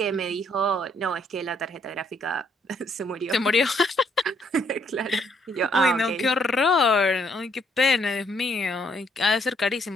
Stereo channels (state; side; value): normal; both; correlation 0.69